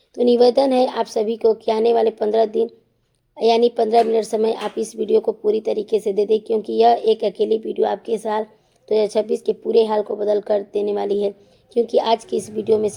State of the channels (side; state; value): both; identical; correlation 1.00